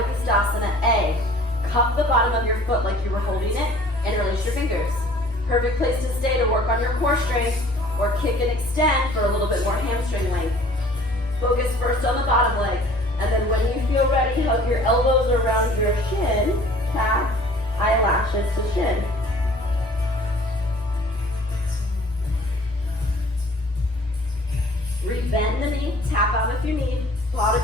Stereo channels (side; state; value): both; normal; correlation 0.51